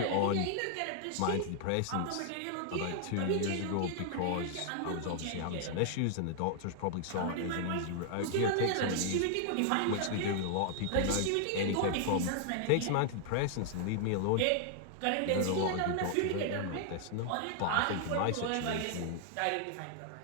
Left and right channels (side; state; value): both; different; correlation 0.00